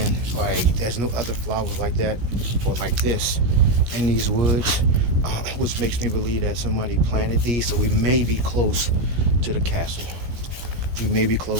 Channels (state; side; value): late; left; 17 ms